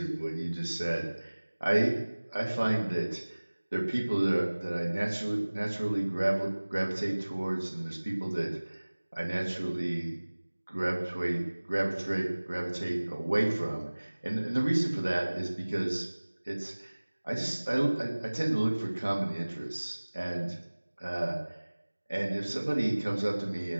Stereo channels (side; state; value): both; inverted; correlation -1.00